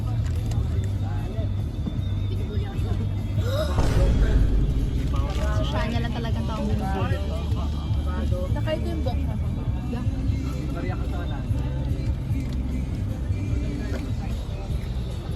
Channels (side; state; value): both; identical; correlation 1.00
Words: So, siya niya lang talagang taong bumibili. Nakahit yung box